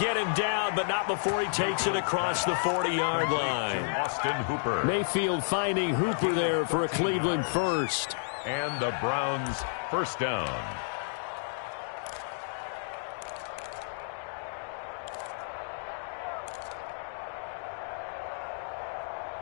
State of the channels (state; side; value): silent; right; digital silence